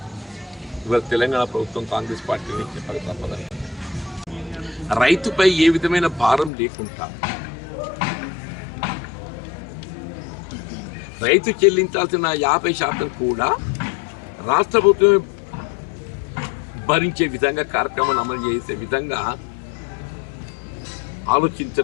ఇవాళ తెలంగాణ ప్రభుత్వం, కాంగ్రెస్ పార్టీని చెప్పక తప్పదని. రైతుపై ఏ విధమైన భారం లేకుండా రైతు చెల్లించాల్సిన 50% కూడా రాష్ట్ర ప్రభుత్వమే భరించే విధంగా కార్యక్రమాన్ని అమలు చేసే విధంగా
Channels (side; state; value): right; drops out; at 6.5 s